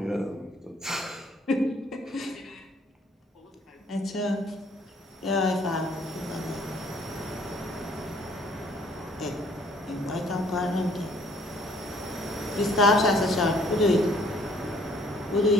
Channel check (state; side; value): normal; both; correlation 0.61